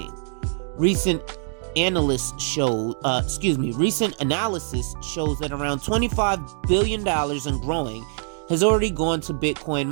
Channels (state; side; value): silent; left; digital silence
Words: Recent analysis shows that around $25 billion and growing has already gone to Bitcoin